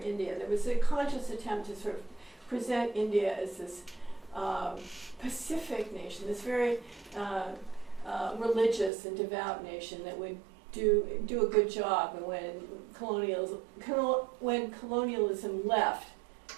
India, there was a conscious attempt to sort of present India as this Pacific nation, this very religious and devout nation that would do a good job. And when colonialism left,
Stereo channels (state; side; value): drops out; left; at 8.9 s